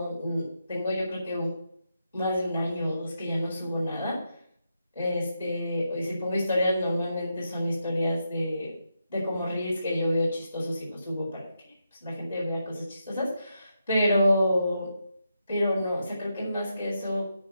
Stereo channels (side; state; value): both; inverted; correlation -0.84